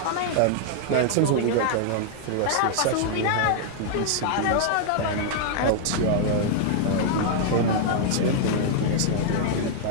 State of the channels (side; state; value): both; different; correlation -0.01